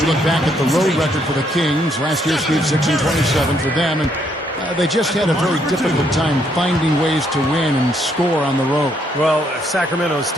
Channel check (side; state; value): both; normal; correlation 0.72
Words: look back at the road record for the Kings. Last year, Steve, 6-27 for them, and they just had a very difficult time finding ways to win and score on the road. Well, Sacramento's